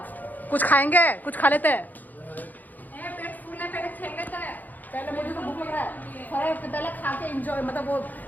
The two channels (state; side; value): late; right; 0.083 ms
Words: कुछ खाएंगे, कुछ खा लेते हैं। पेट फूल है, पहले खेल लेता है। पहले मुझे तो भूख लग रहा है, पहले खा के एंजॉय, मतलब वो